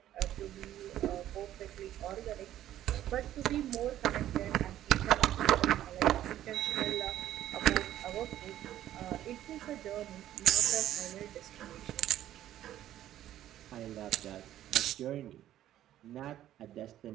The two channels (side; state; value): left; quieter; 12.5 dB